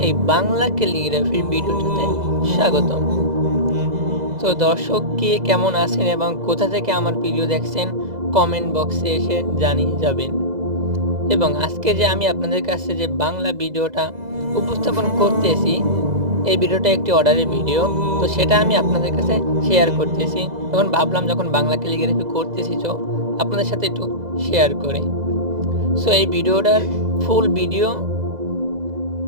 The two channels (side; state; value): left; late; 2.0 ms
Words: এই বাংলা ক্যালিগ্রাফির ভিডিওটাতে স্বাগতম। তো দর্শক কে কেমন আছেন এবং কোথা থেকে আমার ভিডিও দেখছেন কমেন্ট বক্সে এসে জানিয়ে যাবেন। এবং আজকে যে আমি আপনাদের কাছে যে বাংলা ভিডিওটা উপস্থাপন করতেছি, এই ভিডিওটা একটি অর্ডারের ভিডিও। তো সেটা আমি আপনাদের কাছে শেয়ার করতেছি। তখন ভাবলাম যখন বাংলা ক্যালিগ্রাফি করতেছি তো আপনাদের সাথে একটু শেয়ার করি। সো এই ভিডিওটার ফুল ভিডিও